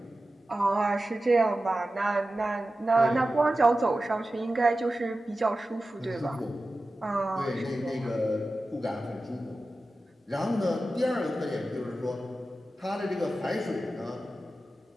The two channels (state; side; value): normal; both; correlation 0.94